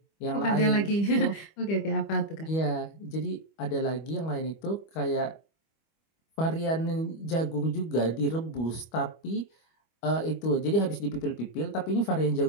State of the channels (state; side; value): late; right; 25 ms